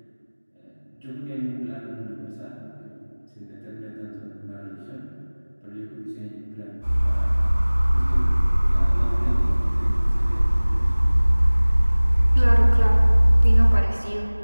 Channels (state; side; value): inverted; both; correlation -1.00